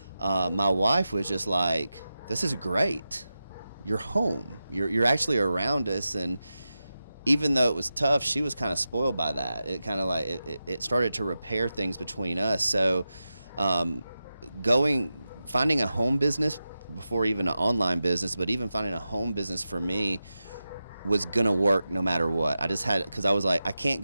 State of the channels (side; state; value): both; inverted; correlation -0.92